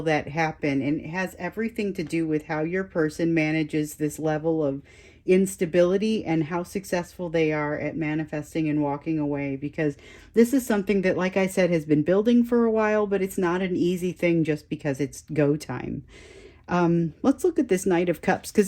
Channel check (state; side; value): identical; both; correlation 1.00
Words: that happen, and it has everything to do with how your person manages this level of instability and how successful they are at manifesting and walking away, because this is something that, like I said, has been building for a while, but it's not an easy thing just because it's go time. Let's look at this Knight of Cups,